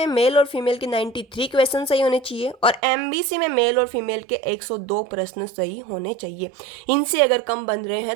मेल और फीमेल के 93 क्वेश्चन सही होने चाहिए, और एमबीसी में मेल और फीमेल के 102 प्रश्न सही होने चाहिए। इनसे अगर कम बन रहे हैं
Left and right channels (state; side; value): drops out; left; at 2.8 s